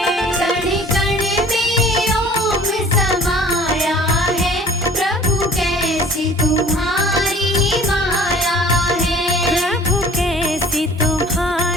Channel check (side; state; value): both; normal; correlation 0.48